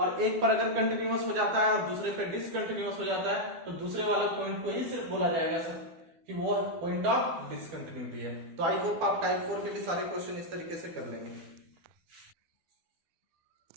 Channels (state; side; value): late; left; 12 ms